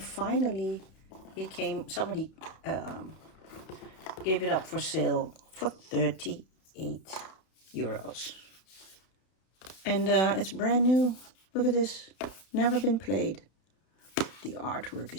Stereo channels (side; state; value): right; late; 32 ms